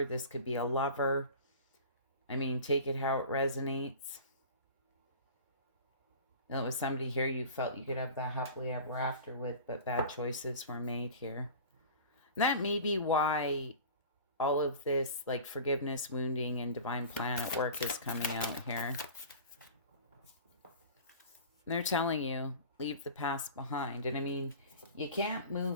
This could be a lover. I mean, take it how it resonates. It was somebody here you felt you could have that happily ever after with, but bad choices were made here. And that may be why all of this, like forgiveness, wounding, and divine plan at work is coming out here. And they're telling you, leave the past behind. And I mean, you can't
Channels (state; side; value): inverted; both; correlation -0.39